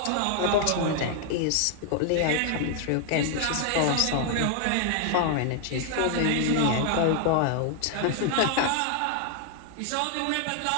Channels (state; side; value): different; both; correlation 0.00